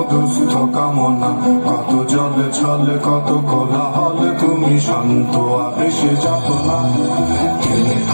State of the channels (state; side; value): inverted; both; correlation -1.00